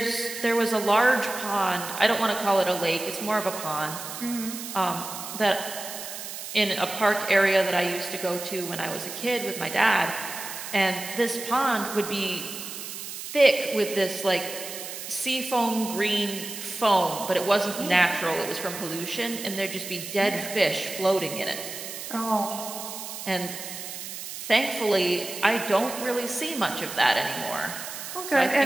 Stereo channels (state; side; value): noise; right; hiss, 9 dB below the sound